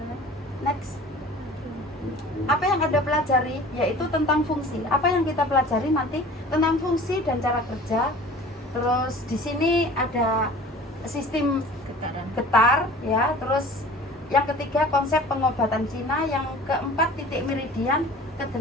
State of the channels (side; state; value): both; normal; correlation 0.43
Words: Next. Apa yang Anda pelajari yaitu tentang fungsi. Apa yang kita pelajari nanti tentang fungsi dan cara kerja. Terus di sini ada sistem getar, ya. Terus yang ketiga konsep pengobatan Cina, yang keempat titik meridian,